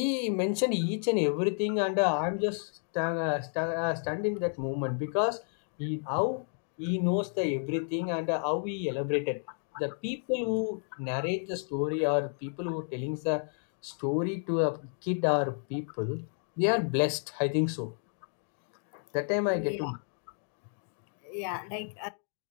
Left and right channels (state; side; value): silent; right; 57 dB below the other